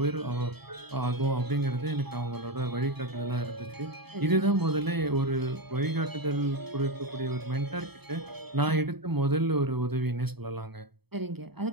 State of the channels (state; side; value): late; left; 0.97 ms